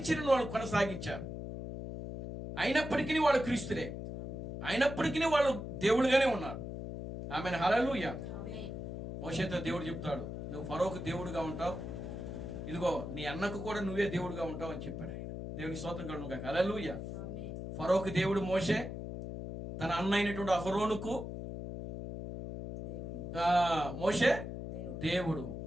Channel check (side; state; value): left; noise; hum, 7 dB below the sound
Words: వాళ్ళు కొనసాగించారు. అయినప్పటికీ వాళ్ళు క్రీస్తులే, అయినప్పటికీ వాళ్ళు దేవుడుగానే ఉన్నారు. ఆమెను. హల్లెలూయా. మోషేతో దేవుడు చెప్తాడు, నువ్వు ఫరోకు దేవుడుగా ఉంటావు, ఇదిగో నీ అన్నకు కూడా నువ్వే దేవుడుగా ఉంటావు అని చెప్పాడు ఆయన. దేవుని స్తోత్రం కలుగును గాక. హల్లెలూయా. ఫరోకు దేవుడు మోషే, తన అన్న అయినటువంటి అహరోనుకు మోషే దేవుడు.